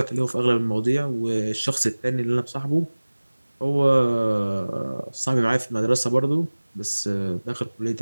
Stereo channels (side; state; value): both; inverted; correlation -1.00